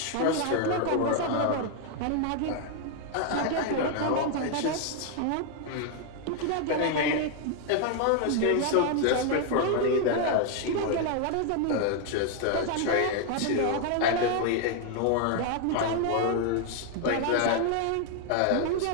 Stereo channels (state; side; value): different; both; correlation 0.00